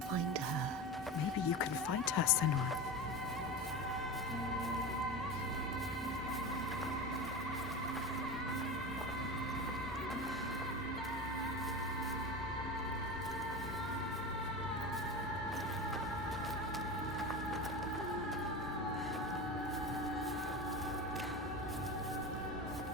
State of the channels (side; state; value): both; normal; correlation 0.25